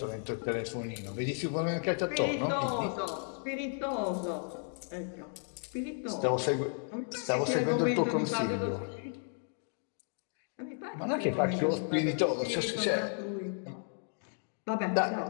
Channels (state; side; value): silent; right; 55 dB below the other